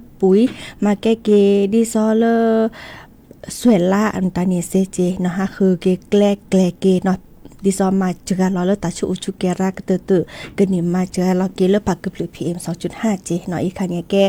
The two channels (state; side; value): identical; both; correlation 1.00